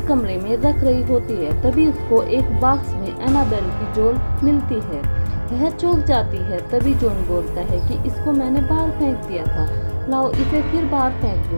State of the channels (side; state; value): both; inverted; correlation -1.00